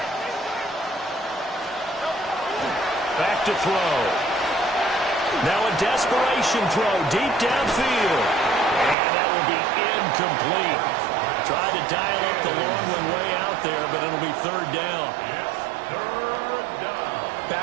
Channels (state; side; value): drops out; left; at 9.0 s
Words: Back to throw. Now a desperation throw deep downfield. And that will be incomplete. Tried to dial up the long one way out there, but it'll be 3rd down.